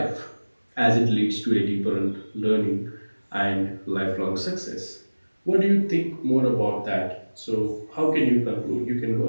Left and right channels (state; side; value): inverted; both; correlation -1.00